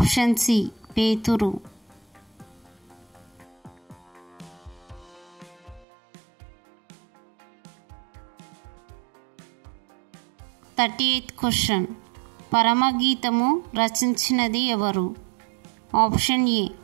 C పేతురు. 38th question. పరమగీతము రచించినది ఎవరు? ఆప్షన్ ఏ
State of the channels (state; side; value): drops out; left; at 5.9 s